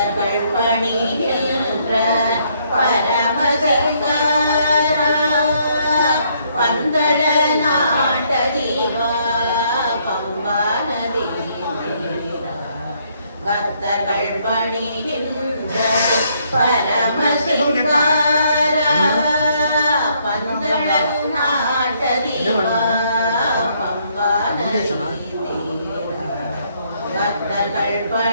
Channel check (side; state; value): both; inverted; correlation -0.70